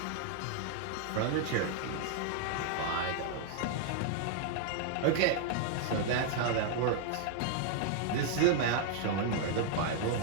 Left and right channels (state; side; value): different; both; correlation 0.00